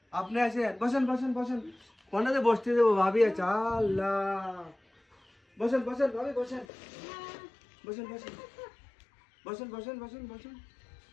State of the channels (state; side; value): drops out; right; at 6.7 s